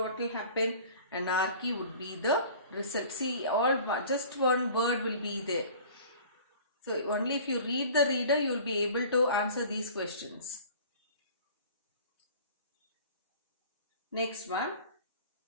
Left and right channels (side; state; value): both; inverted; correlation -0.45